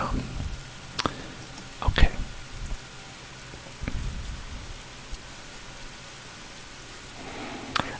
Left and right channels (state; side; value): identical; both; correlation 1.00